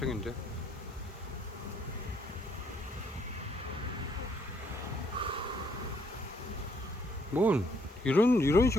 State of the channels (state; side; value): normal; both; correlation 0.69